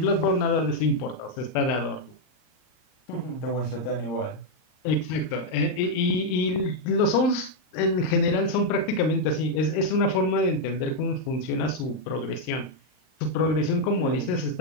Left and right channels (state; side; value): late; right; 38 ms